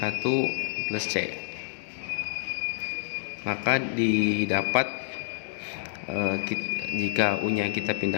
plus C, maka didapat jika U nya kita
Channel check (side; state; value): right; silent; digital silence